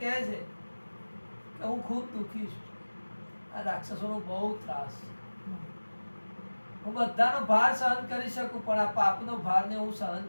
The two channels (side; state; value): both; inverted; correlation -1.00